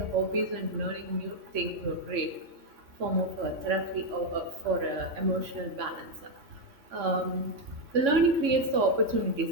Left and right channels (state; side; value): late; left; 3.6 ms